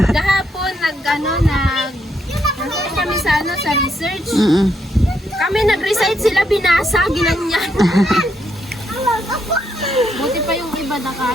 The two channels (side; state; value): both; normal; correlation 0.76